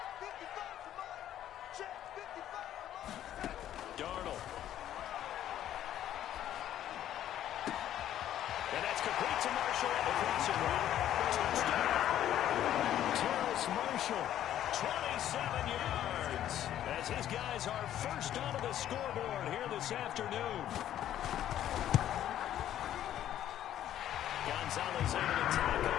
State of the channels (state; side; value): quieter; right; 11.6 dB